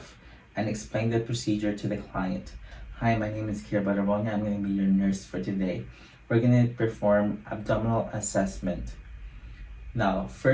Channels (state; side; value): identical; both; correlation 1.00